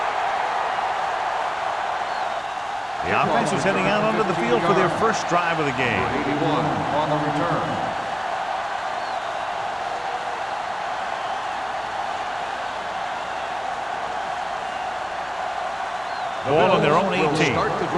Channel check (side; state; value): both; identical; correlation 1.00